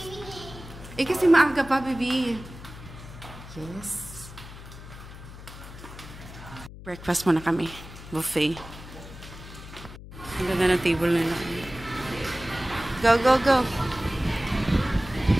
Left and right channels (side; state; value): left; noise; hum, 15 dB below the sound